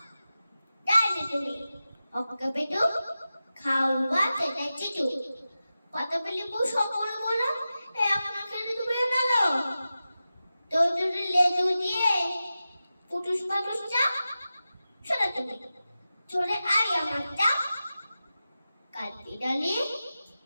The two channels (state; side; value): inverted; both; correlation -0.93